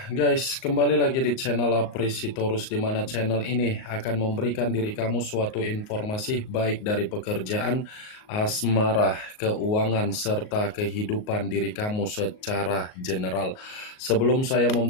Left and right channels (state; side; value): late; right; 38 ms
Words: guys, kembali lagi di channel Apresitorus, di mana channel ini akan memberikan diri kamu suatu informasi baik dari pekerjaan, asmara, keuangan, serta kehidupan diri kamu secara general. Sebelum saya